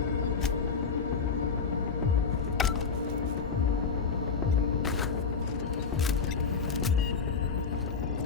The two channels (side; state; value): right; quieter; 5.5 dB